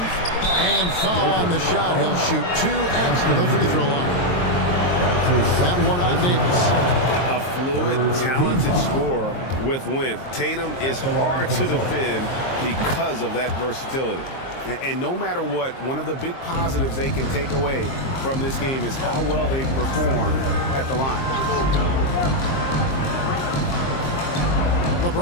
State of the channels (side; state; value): right; late; 23 ms